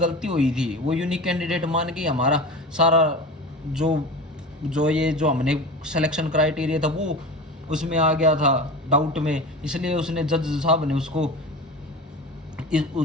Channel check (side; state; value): both; normal; correlation 0.31